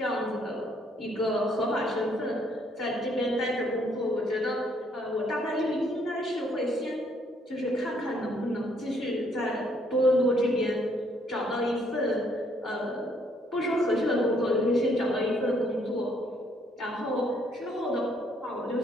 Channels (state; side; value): normal; both; correlation 0.68